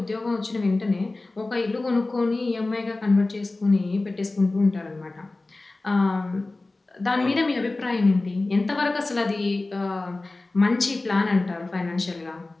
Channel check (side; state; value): right; quieter; 3.1 dB